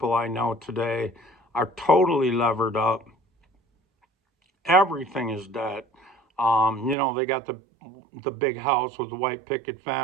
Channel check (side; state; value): left; drops out; at 7.0 s